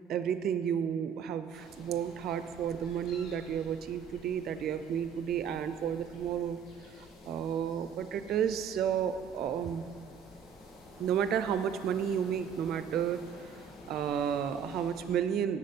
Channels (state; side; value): quieter; left; 7.9 dB